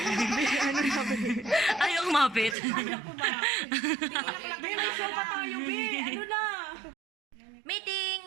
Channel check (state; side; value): drops out; left; at 2.6 s